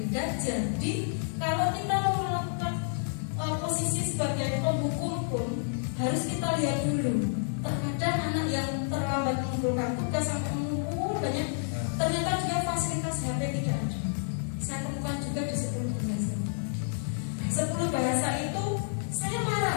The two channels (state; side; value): silent; right; digital silence